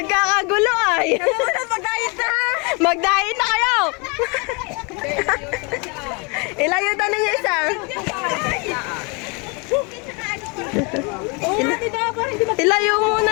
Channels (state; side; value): quieter; right; 31.4 dB